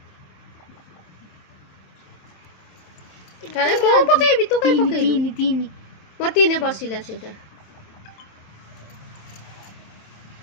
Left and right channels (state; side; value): late; right; 27 ms